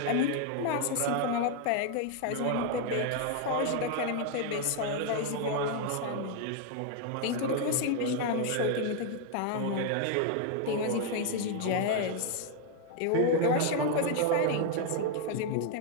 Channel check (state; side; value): different; both; correlation 0.00